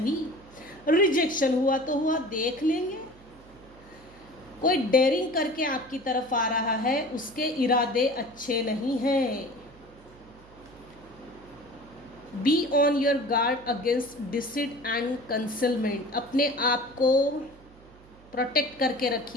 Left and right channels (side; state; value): right; noise; hum, 24 dB below the sound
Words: रिजेक्शन हुआ तो हुआ, देख लेंगे। कोई डेयरिंग करके आपकी तरफ आ रहा है, उसके इरादे अच्छे नहीं हैं। Be on your guard against deceit and concealment. अपने आप को प्रोटेक्ट करके